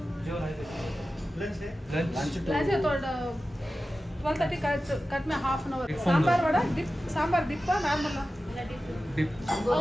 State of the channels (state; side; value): normal; both; correlation 0.94